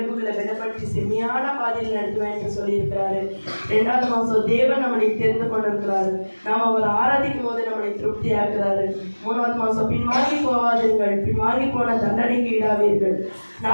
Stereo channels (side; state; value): both; inverted; correlation -1.00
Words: விடப்பட்டு செம்மையான பாதையில் நடத்துவேன் என்று சொல்லியிருக்கிறாரு. 2வது மாதம் தேவன் நம்மளை தெரிந்து கொண்டிருக்கிறாரு. நாம் அவர் ஆராதிக்கும் போது நம்மளை திருப்தி ஆக்குறாரு. 3வது மாதம் பின்வாங்கி போவாதீர்கள், பின்வாங்கி போன தண்டனைக்கு ஈடாவீர்கள்.